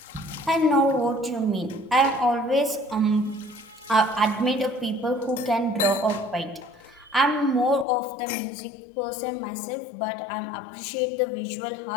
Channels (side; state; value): right; drops out; at 7.9 s